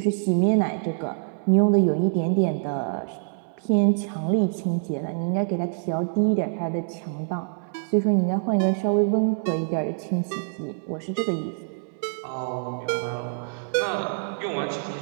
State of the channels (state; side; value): silent; left; digital silence